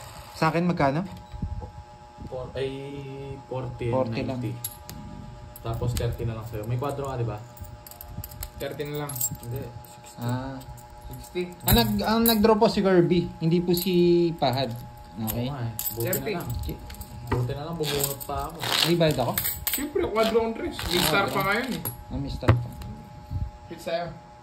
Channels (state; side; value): identical; both; correlation 1.00